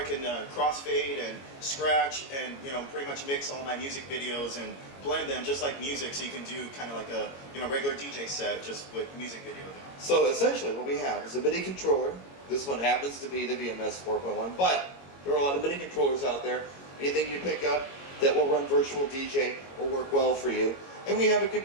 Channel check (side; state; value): right; late; 22 ms